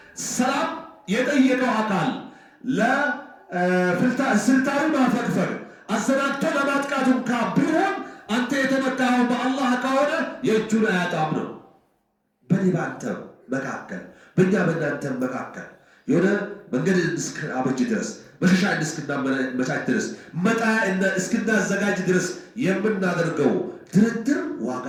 ሰላም የጠየቀው አካል ለስልታዊ ማፈግፈግ አሰናድቶ ለማጥቃቱ እንኳ ቢሆን አንተ የተመካኸው በአላህ ከሆነ የእጁን አያጣም ነው። በኔ በአንተ መካከል በእኛ በእናንተ መካከል የሆነ መንገድ እስክናበጅ ድረስ መሸሻ እስክናመቻች ድረስ መጣያ እስክናዘጋጅ ድረስ የምናደርገው ድርድር ዋጋ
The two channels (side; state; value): both; identical; correlation 1.00